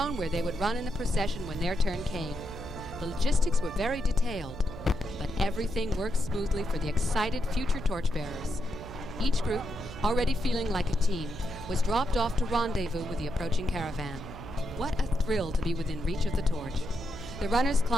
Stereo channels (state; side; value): noise; right; hum, 12 dB below the sound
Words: where they would run in the procession when their turn came. The logistics were very detailed, but everything worked smoothly for the excited future torchbearers. Each group, already feeling like a team, was dropped off to rendezvous with the approaching caravan. What a thrill to be within reach of the torch. The runners